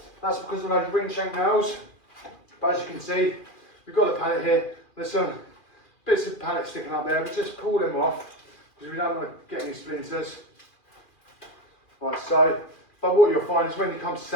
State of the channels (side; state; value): right; late; 2.4 ms